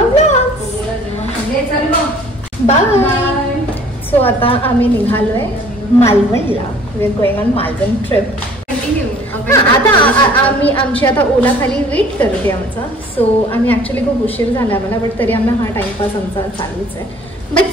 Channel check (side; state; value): both; normal; correlation 0.53